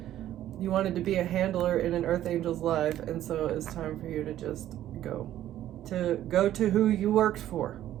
You wanted to be a handler in an Earth Angel's life, and so it's time for you to just go to who you worked for.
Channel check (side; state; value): left; quieter; 12.6 dB